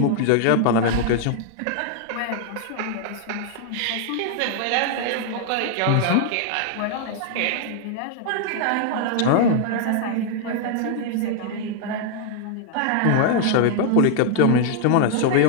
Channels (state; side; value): different; both; correlation 0.00